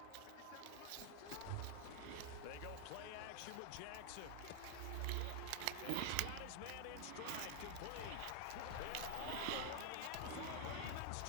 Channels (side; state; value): both; different; correlation 0.00